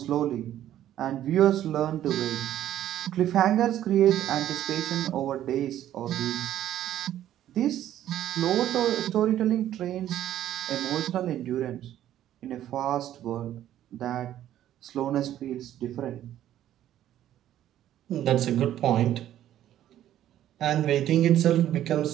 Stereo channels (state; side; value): quieter; left; 12.1 dB